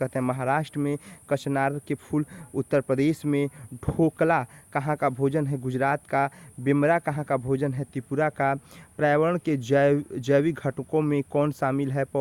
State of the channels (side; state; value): both; identical; correlation 1.00